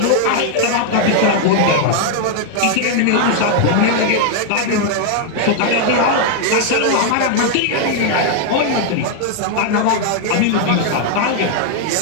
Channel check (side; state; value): both; different; correlation 0.00